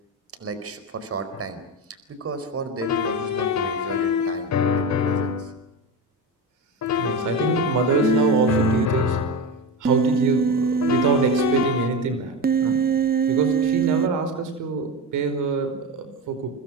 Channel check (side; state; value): both; normal; correlation 0.21